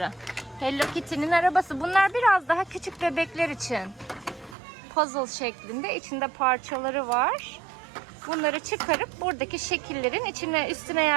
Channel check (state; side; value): drops out; left; at 4.5 s